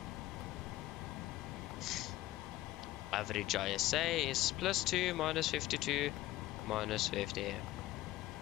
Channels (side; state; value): right; quieter; 15.9 dB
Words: Average ISA is +2, -52, -50.